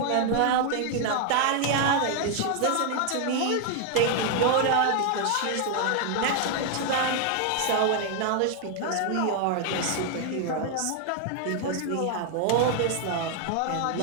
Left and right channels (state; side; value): different; both; correlation 0.00